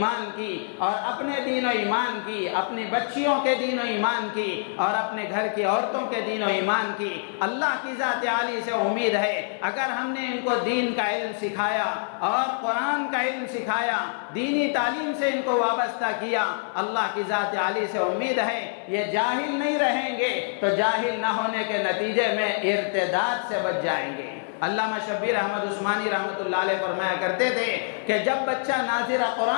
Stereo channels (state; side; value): silent; right; digital silence